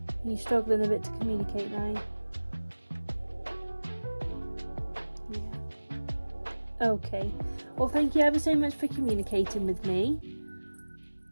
Are you struggling a bit to communicate now? Yeah. Okay. Well, thank you ever so much for communicating with me,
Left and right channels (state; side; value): inverted; both; correlation -1.00